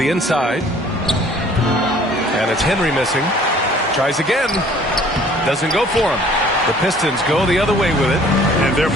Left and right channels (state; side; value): normal; both; correlation 0.54